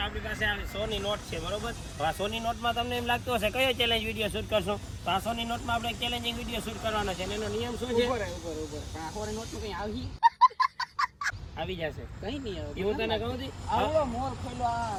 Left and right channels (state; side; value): identical; both; correlation 1.00